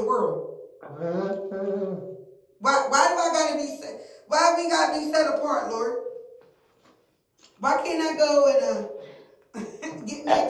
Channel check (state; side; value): identical; both; correlation 1.00